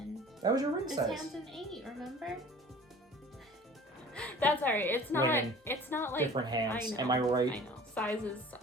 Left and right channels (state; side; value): normal; both; correlation 0.45